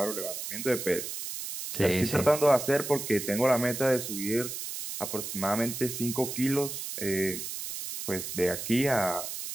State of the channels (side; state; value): right; noise; hiss, 6 dB below the sound